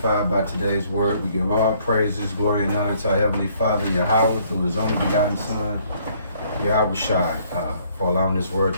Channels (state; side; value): inverted; both; correlation -0.64